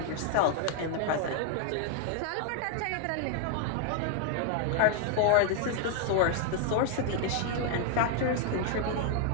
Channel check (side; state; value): both; different; correlation 0.00